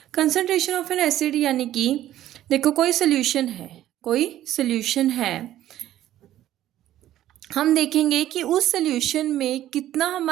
Concentration of N acid यानी कि देखो कोई सोल्यूशन है, हम देखेंगे कि उस सोल्यूशन में कितना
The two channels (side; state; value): left; quieter; 13.0 dB